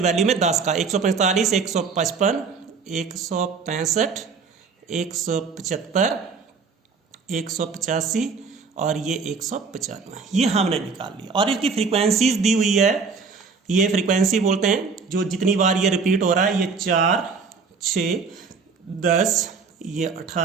वैल्यू में 10 का, 145, 155, 165, 175, 185 और ये 195, ये हमने निकाल लिया। और इसकी फ्रीक्वेंसीज दी हुई है, ये फ्रीक्वेंसी बोलते हैं जो जितनी बार ये रिपीट हो रहा है, ये 4, 6, 10, ये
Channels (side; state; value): left; quieter; 5.0 dB